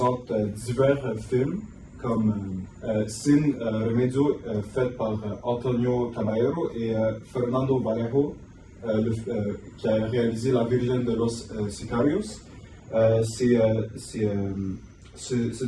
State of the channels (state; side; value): identical; both; correlation 1.00